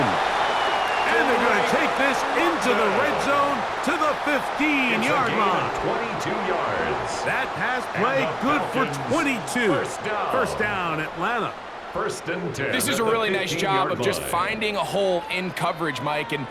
And they're going to take this into the red zone to the 15-yard line. 22 yards. That pass play good for 22. First down, Atlanta. First and 10. This is a really nice job of just finding a hole in coverage, Mike. And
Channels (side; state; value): both; identical; correlation 1.00